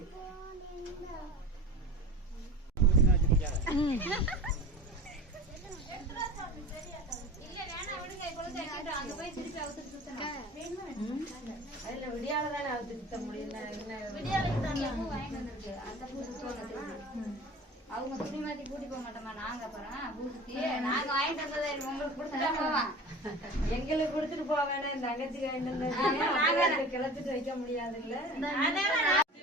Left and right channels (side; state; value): both; normal; correlation 0.37